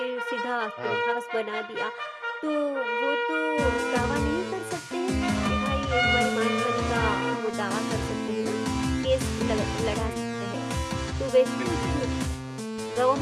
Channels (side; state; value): both; identical; correlation 1.00